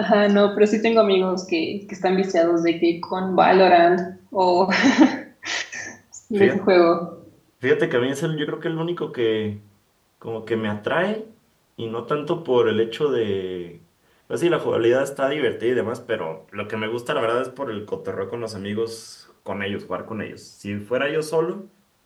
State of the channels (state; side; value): identical; both; correlation 1.00